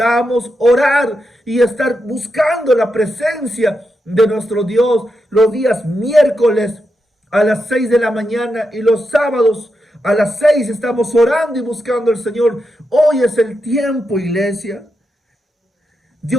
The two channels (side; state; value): both; normal; correlation 0.86